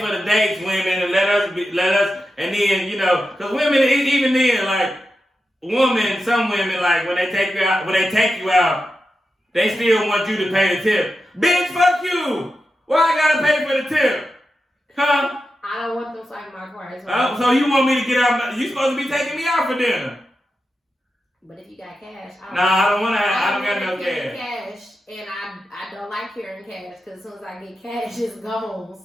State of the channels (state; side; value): normal; both; correlation 0.90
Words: for the dates, women, and let us, and then, you know, because women, even then, like, some women, like, when they take you out, they still want you to pay the tip. Bitch, fuck you! Why I gotta pay for the tip? Huh? I don't want them like my car. So you want me to get out? You supposed to be taking me out for dinner. But if you got cash, I don't got no cash. And I don't like carrying cash because as soon as I get cash, it's gone.